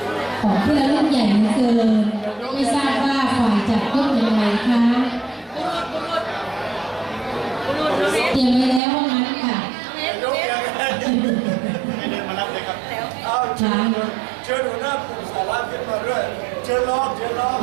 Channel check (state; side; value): drops out; left; at 8.8 s